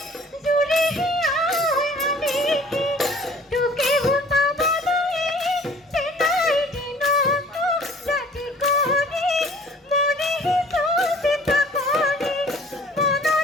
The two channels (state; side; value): normal; both; correlation 0.50